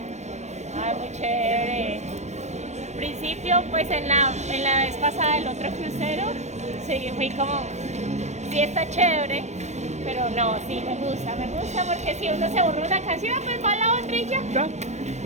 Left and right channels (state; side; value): late; left; 0.33 ms